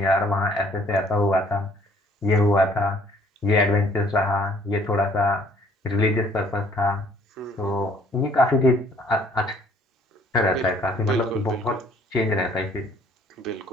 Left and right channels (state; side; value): normal; both; correlation 0.60